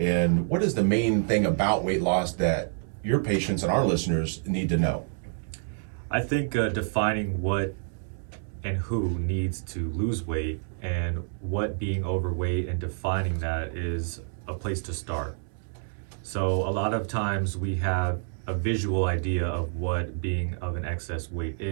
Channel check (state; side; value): silent; left; 59 dB below the other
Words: what is the main thing about weight loss that your patients and our listeners need to know? I think defining what and who needs to lose weight and what being overweight and defining that is a place to start. So a lot of times we have a visual idea of what being of an excess weight